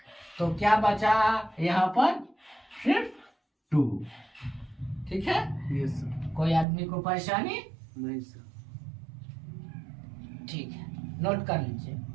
तो क्या बचा यहाँ पर? सिर्फ 2, ठीक है। Yes sir. कोई आदमी को परेशानी? नहीं सर। ठीक है, नोट कर लीजिए।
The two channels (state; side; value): drops out; left; at 6.7 s